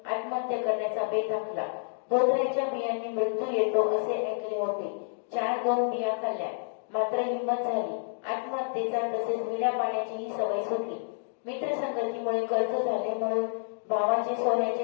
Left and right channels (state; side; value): silent; right; digital silence